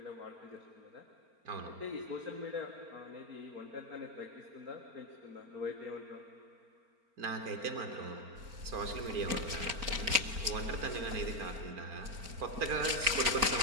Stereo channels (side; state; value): left; late; 4.4 ms